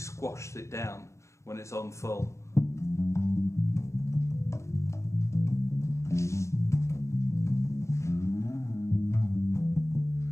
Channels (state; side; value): late; right; 0.14 ms